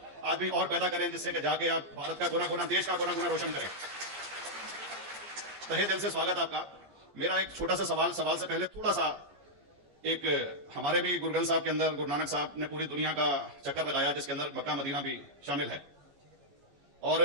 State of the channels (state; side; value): late; left; 14 ms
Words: आदमी और पैदा करें, जिससे कि जाके आप भारत का कोना कोना, देश का कोना कोना रोशन करें। तहे दिल से स्वागत आपका। मेरा एक छोटा सा सवाल से पहले थोड़ा सा, एक हमारे भी गुरु ग्रंथ साहब के अंदर गुरु नानक साहब ने पूरी दुनिया का चक्कर लगाया, जिसके अंदर मक्का मदीना भी शामिल है। और